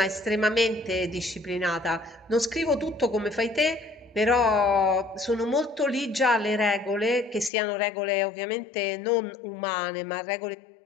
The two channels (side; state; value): right; drops out; at 7.5 s